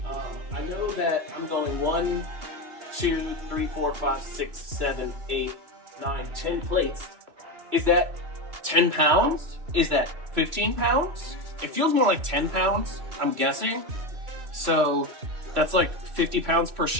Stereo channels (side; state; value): left; late; 2.7 ms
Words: I know that I'm going 1, 2, 3, 4, 5, 6, 7, 8, 9, 10 plates. Is that 10 pounds? Is that 15 pounds? It feels more like 10 pounds, I'm guessing. So that's like 50 pounds per